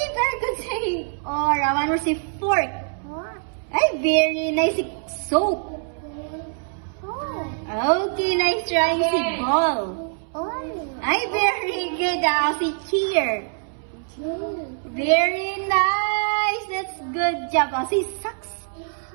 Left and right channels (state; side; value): silent; left; 63 dB below the other